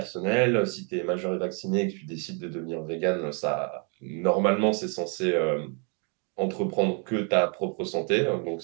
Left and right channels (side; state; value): left; quieter; 37.9 dB